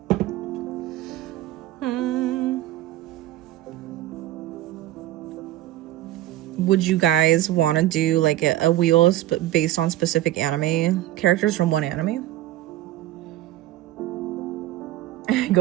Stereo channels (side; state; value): left; quieter; 14.7 dB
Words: Would you guys want to do like a wheel based on specific anime characters from one anime?